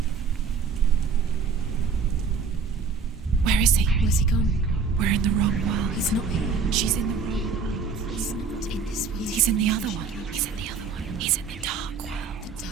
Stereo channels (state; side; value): quieter; left; 5.1 dB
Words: Where is he? Where's he gone? We're in the wrong world. He's not here. She's in the wrong world. He's not in this world. He's in the other one. He's in the other one. He's in the dark world. The